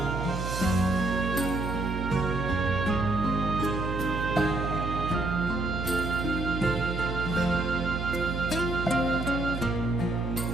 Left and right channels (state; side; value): noise; right; hum, 4 dB below the sound